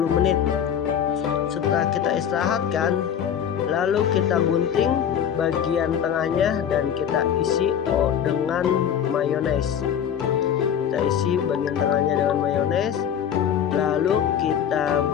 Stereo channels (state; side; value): quieter; right; 8.8 dB